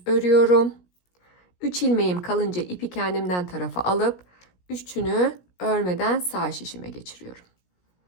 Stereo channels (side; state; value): right; late; 17 ms